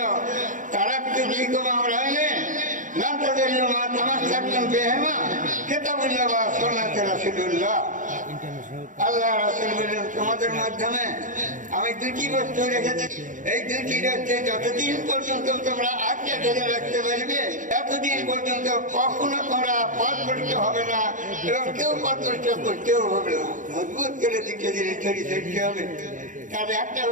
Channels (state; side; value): late; left; 0.38 ms